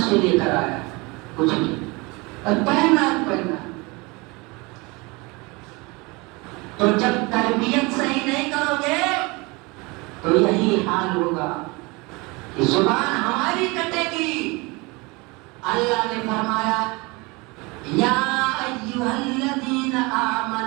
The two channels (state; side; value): quieter; left; 25.8 dB